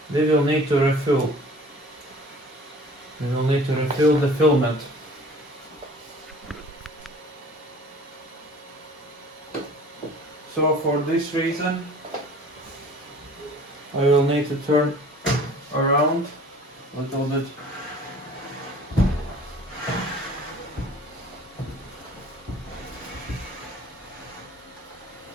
We will need to refill. We will need to refill the filament. So for this reason, I will need to turn around a little bit.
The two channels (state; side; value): normal; both; correlation 0.48